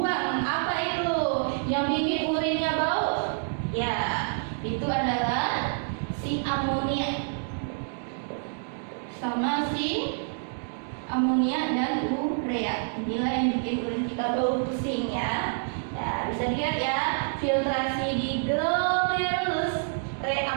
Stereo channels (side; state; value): left; silent; digital silence